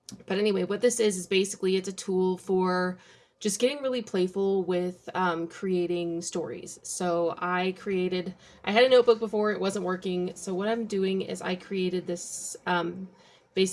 but anyway, what this is basically it's a tool for just getting really playful with creating stories. So I had a notebook before, it wasn't working. So what I'm doing is I created this,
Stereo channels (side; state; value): both; identical; correlation 1.00